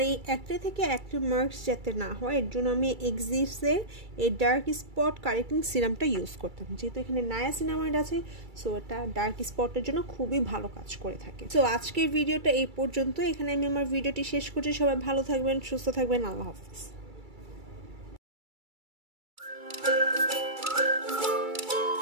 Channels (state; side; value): late; left; 2.3 ms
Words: এই অ্যাকনে থেকে অ্যাকনে মার্কস যাতে না হয় এর জন্য আমি এক্সিস্টের এই ডার্ক স্পট কারেক্টিং সিরামটা ইউজ করতাম। যেহেতু এখানে নায়াসিনামাইড আছে, সো এটা ডার্ক স্পটের জন্য খুবই ভালো কাজ করে থাকে। সো আজকের ভিডিওটা এই পর্যন্ত। এখানে আমি আমার ভিডিওটি শেষ করছি। সবাই ভালো থাকবেন, সুস্থ থাকবেন। আল্লাহ হাফিজ।